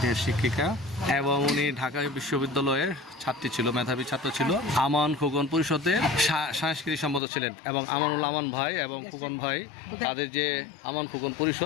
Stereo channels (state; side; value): drops out; right; at 7.2 s